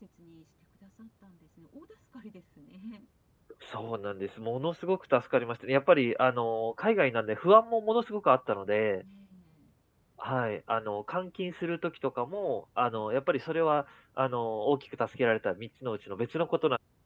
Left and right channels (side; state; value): both; identical; correlation 1.00